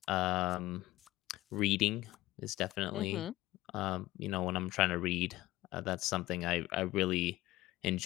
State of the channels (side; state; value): right; quieter; 17.2 dB